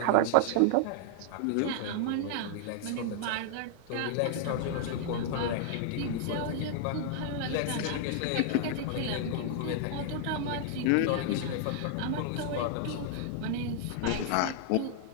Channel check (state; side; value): different; both; correlation -0.01